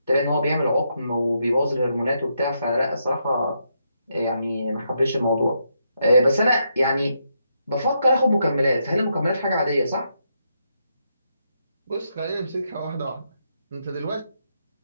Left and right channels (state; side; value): inverted; both; correlation -0.79